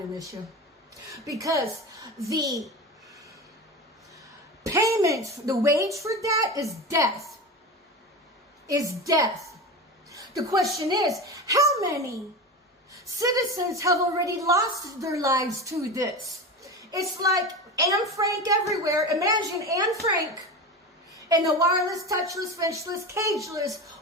miss you. Because the payment, the wage for that is death. Is death. The question is, how many citizens have already lost their lives to this? It's like Anne Frank everywhere. Imagine Anne Frank in the wireless, touchless, fenchless, cageless,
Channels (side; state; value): both; normal; correlation 0.26